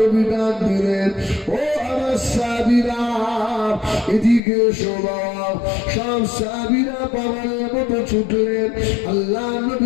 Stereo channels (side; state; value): right; drops out; at 4.4 s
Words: ডাক দিলেন, ও আমার সাহাবীরা এদিকে শোনো। সব সাহাবীরা পাগলের মতো ছুটলেন, আল্লাহ